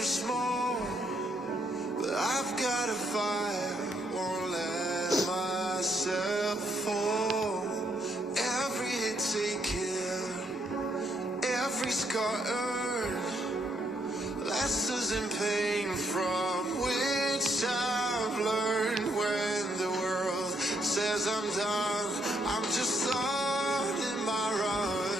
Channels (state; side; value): normal; both; correlation 0.73